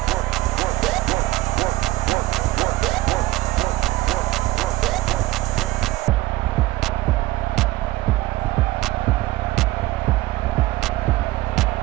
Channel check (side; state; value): left; quieter; 18.0 dB